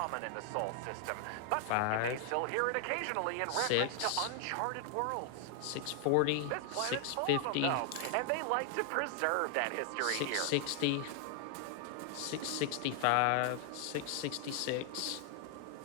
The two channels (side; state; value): both; different; correlation 0.00